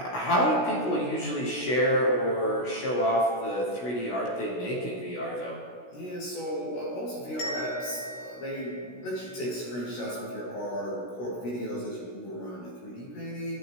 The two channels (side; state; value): right; late; 16 ms